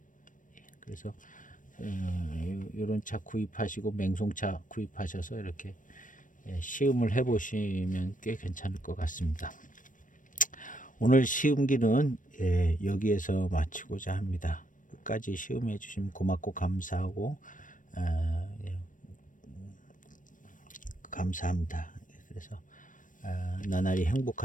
그래서 이런 차 구입하시고 맹송차 구입하셔서 이렇게 시음을 해보시면 꽤 괜찮을 것 같습니다. 오늘 시음기는 여기에서 마치고자 합니다. 끝까지 시음해 주시면 고맙고 감사하고 감사합니다. 그래서 나날이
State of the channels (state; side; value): late; right; 0.38 ms